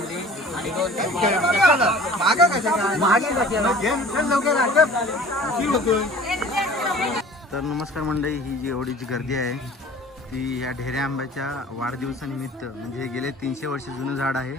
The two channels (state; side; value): normal; both; correlation 0.45